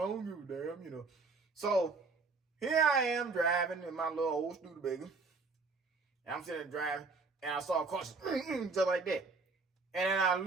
don't give a damn, you know. So here I am driving in my little old Studebaker. And I'm sitting there driving, and I saw a car just like that. And then I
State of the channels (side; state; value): left; quieter; 4.2 dB